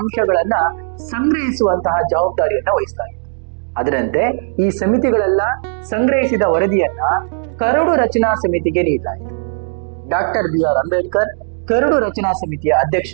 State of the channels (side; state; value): left; silent; digital silence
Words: ಸಂಗ್ರಹಿಸುವಂತಹ ಜವಾಬ್ದಾರಿಯನ್ನ ವಹಿಸಲಾಗಿತ್ತು. ಅದರಂತೆ ಈ ಸಮಿತಿಗಳೆಲ್ಲ ಸಂಗ್ರಹಿಸಿದ ವರದಿಯನ್ನ ಕರಡು ರಚನಾ ಸಮಿತಿಗೆ ನೀಡಲಾಯಿತು. ಡಾಕ್ಟರ್ BR ಅಂಬೇಡ್ಕರ್ ಕರಡು ರಚನಾ ಸಮಿತಿಯ ಅಧ್ಯಕ್ಷ